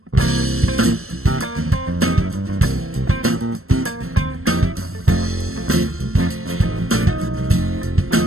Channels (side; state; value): left; late; 0.62 ms